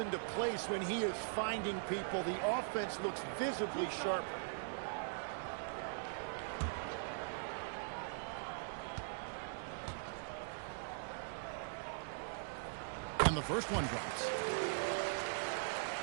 place when he is finding people. The offense looks visibly sharper. And the first one drops.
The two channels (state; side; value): silent; left; digital silence